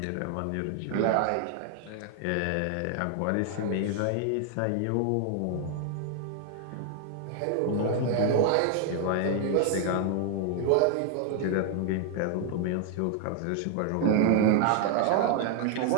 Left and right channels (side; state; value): both; different; correlation 0.00